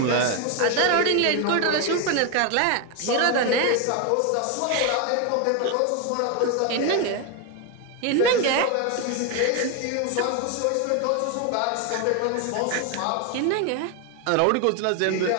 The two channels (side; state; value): both; different; correlation 0.01